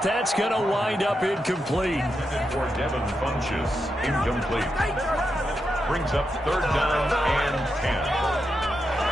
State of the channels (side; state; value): both; normal; correlation 0.86